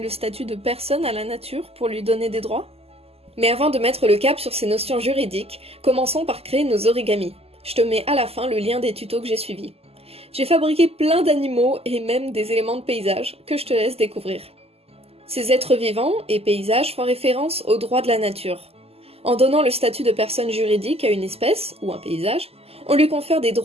statut de personne à la nature pour lui donner des droits? Mais avant de mettre le cap sur ces notions juridiques, commençons par créer nos origamis. Je te mets à la fin le lien des tutos que j'ai suivis. J'ai fabriqué plein d'animaux et même des éléments de paysage que je te laisse découvrir. Ces êtres vivants et paysages font référence aux droits de la nature. En donnant le statut de personne juridique à une espèce, ou un paysage, on lui confère des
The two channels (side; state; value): left; late; 0.29 ms